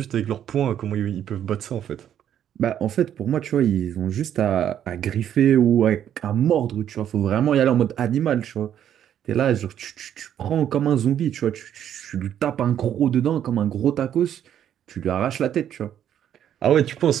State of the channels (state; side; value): quieter; left; 10.0 dB